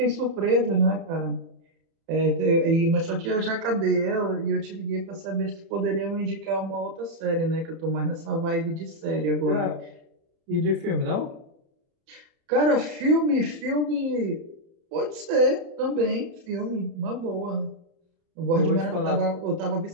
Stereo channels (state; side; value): late; left; 30 ms